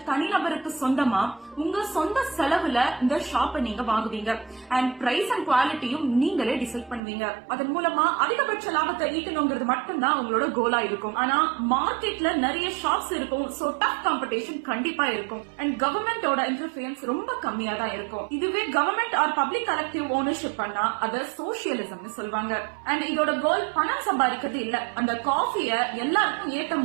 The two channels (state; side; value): drops out; left; at 7.0 s